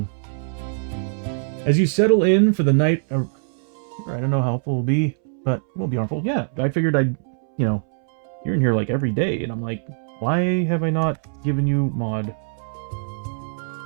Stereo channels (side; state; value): left; silent; 64 dB below the other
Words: As you settle in for the night, I don't know how helpful it will be, but it won't be harmful. Yeah, I figured I'd, you know, you're in here like every day, and I'm like, why have I not given you mod?